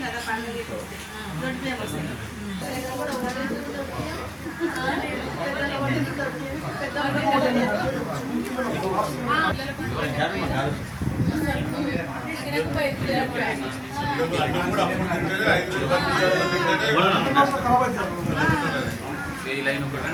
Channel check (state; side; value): identical; both; correlation 1.00